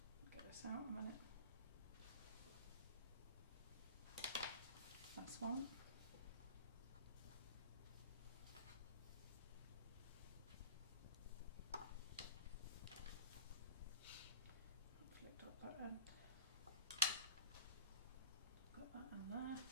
Get this out a minute. That's one. Flicked up that end. Got that in there.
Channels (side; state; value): both; inverted; correlation -0.39